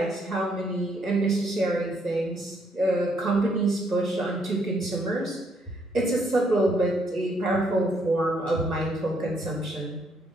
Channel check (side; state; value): both; normal; correlation 0.71